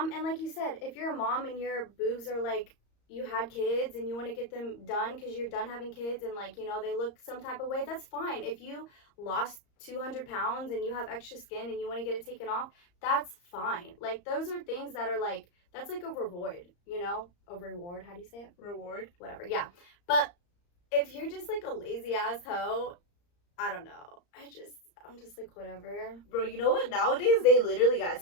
and like you said, if you're a mom and your boobs are like, you had kids and you want to get them done because you're done having kids and, like, you know, they look some type of way, that's fine. If you lost 200 pounds and you have extra skin and you want to get it taken off, that's fine. Like, those are things that are like, that's like a reward, you know? A reward, how do you say it? Reward. Whatever, yeah. But if you're just like a lazy ass hoe, I don't know. I'm just like, whatever. Bro, you know what? Nowadays, they literally got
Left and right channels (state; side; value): late; right; 34 ms